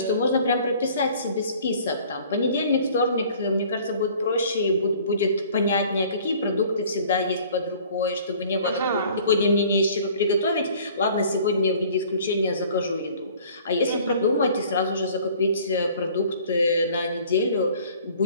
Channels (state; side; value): inverted; both; correlation -0.52